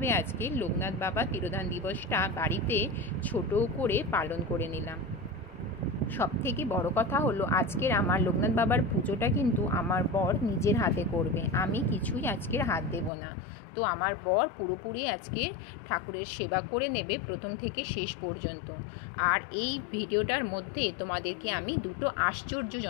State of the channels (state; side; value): drops out; right; at 13.1 s